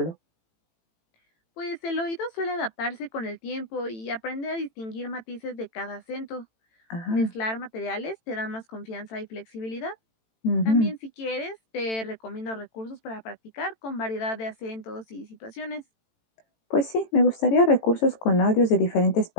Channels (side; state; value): right; late; 18 ms